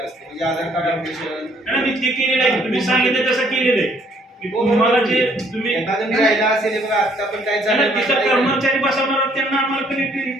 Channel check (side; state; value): both; normal; correlation 0.64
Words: असतं म्हणजे आधार कार्ड अपडेशन मी ते केलेलं आहे. तुम्ही सांगितलं तसं केलेलं आहे. तुम्हाला जे तुम्ही एखादं राहिला असेल बघा आता पण काय झालं कर्मचारी बसवणार त्यांना आम्हाला